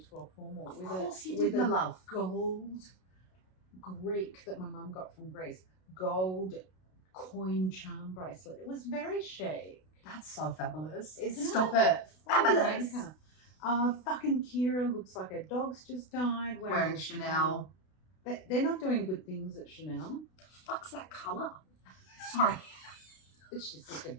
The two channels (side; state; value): right; late; 32 ms